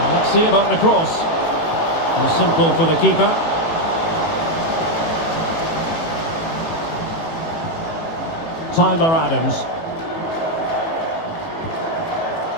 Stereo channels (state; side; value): late; right; 18 ms